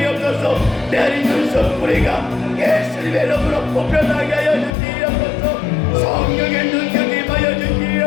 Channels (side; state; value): right; drops out; at 4.7 s